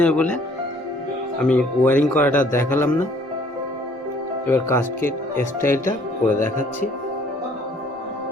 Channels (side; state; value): both; normal; correlation 0.59